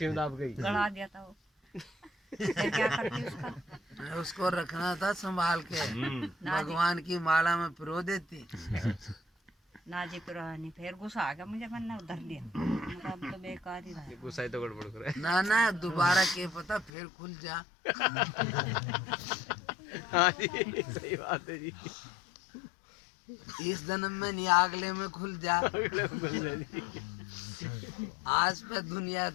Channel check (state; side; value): drops out; right; at 16.9 s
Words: में दाब गई। गड़ा दिया था वो। फिर क्या करती उसका? उसको रखना था संभाल के, ना जी भगवान की माला में पिरो देती। ना जी पुरानी फिर गुस्सा आ गया मुझे, मैंने उधर लिया, मतलब तो बेकार ही रहा। गुस्सा ही तो गड़बड़ करे। ना दोबारा के पता फिर खुल जा। हाँ जी सही बात है जी। इस जन्म में नहीं, अगले में खुल जा। आज पे दुनिया